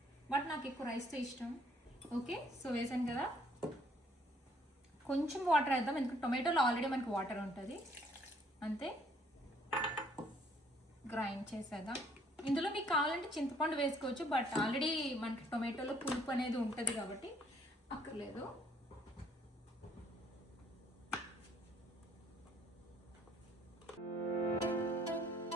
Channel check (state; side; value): normal; both; correlation 0.63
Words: బట్ నాకు ఎక్కువ రైస్తో ఇష్టం. ఓకే, సో వేసాను కదా, కొంచెం వాటర్ వేద్దాం, ఎందుకంటే టొమాటోలో ఆల్రెడీ మనకి వాటర్ ఉంటుంది. అంతే, గ్రైండ్ చేసేద్దాం. ఇందులో మీకు కావాలంటే చింతపండు వేసుకోవచ్చు, బట్ ఆల్రెడీ మనకి టొమాటోలో పులుపు అనేది ఉంటుంది కాబట్టి అక్కర్లేదు.